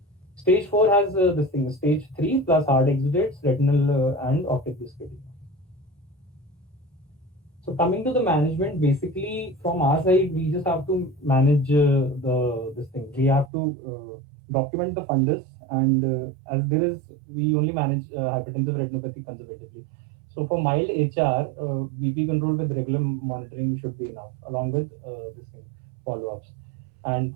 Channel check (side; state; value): left; drops out; at 13.5 s